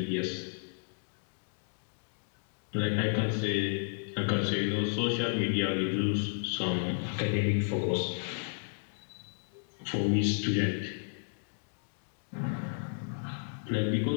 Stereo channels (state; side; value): silent; right; digital silence